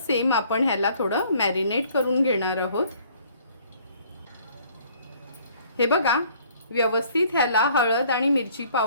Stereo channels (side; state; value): both; inverted; correlation -0.58